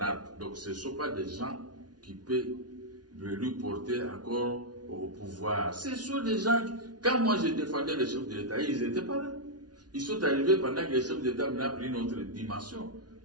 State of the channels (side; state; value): left; late; 0.69 ms